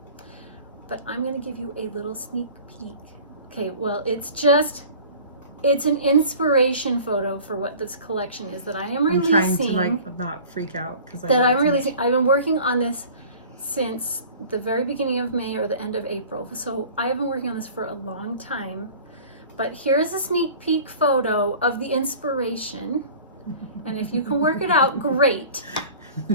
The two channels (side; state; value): both; inverted; correlation -0.44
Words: But I'm going to give you a little sneak peek. Okay, well, it's an inspiration photo for what this collection is that I am releasing. I'm trying to not freak out because I'm releasing. I've been working on this since the very beginning of May or the end of April. So I have been working on this for a long time. But here's a sneak peek photo of the inspiration. And if you can work it out, great.